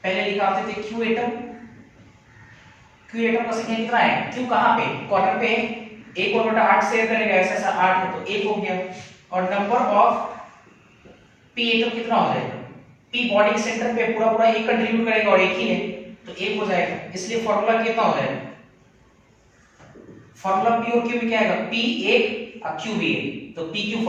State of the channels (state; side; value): identical; both; correlation 1.00